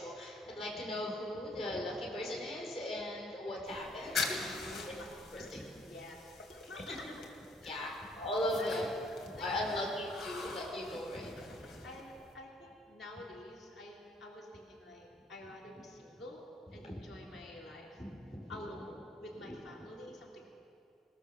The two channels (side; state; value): both; normal; correlation 0.64